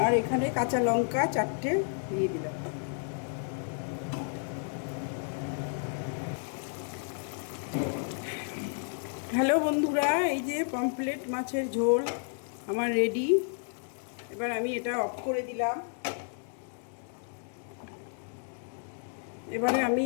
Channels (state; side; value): silent; right; 57 dB below the other